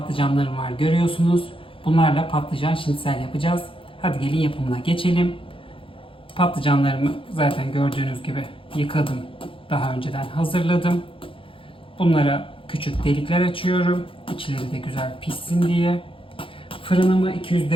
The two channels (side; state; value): right; late; 0.26 ms